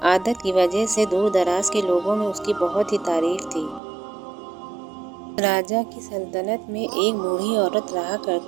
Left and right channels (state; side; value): drops out; left; at 3.8 s